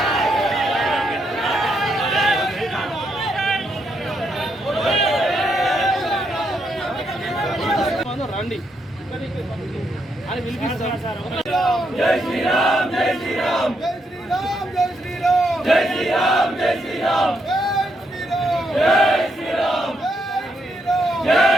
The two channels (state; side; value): normal; both; correlation 0.78